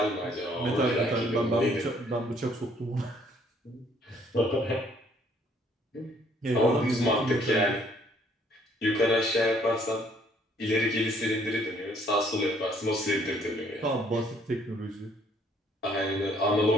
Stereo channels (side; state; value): both; normal; correlation 0.64